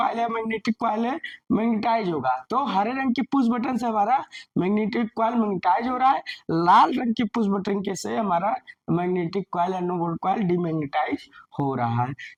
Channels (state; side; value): identical; both; correlation 1.00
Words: है, मैग्नेटिक कॉइल है, मैग्नेटाइज होगा, तो हरे रंग की पुश बटन से हमारा मैग्नेटिक कॉइल मैग्नेटाइज हो रहा है, लाल रंग की पुश बटन के से हमारा मैग्नेटिक कॉइल या नो वोल्ट कॉइल डीमैग्नेटाइज हो रहा है।